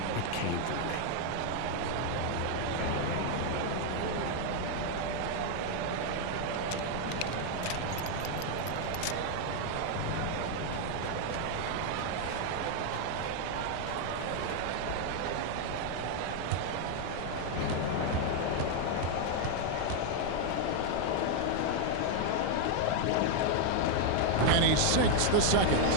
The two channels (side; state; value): both; different; correlation 0.00